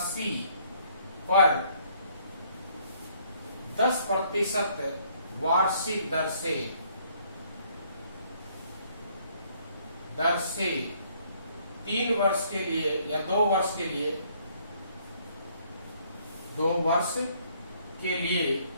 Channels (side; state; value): both; inverted; correlation -0.65